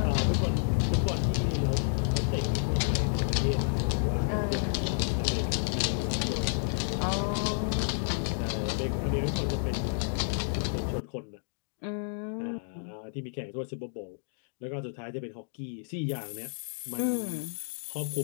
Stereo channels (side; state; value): right; silent; digital silence